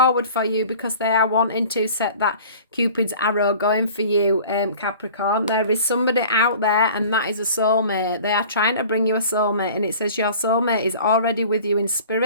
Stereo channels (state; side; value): inverted; both; correlation -0.45